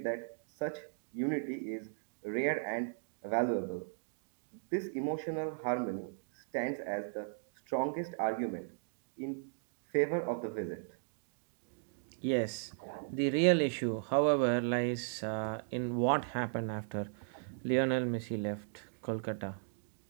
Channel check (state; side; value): silent; left; digital silence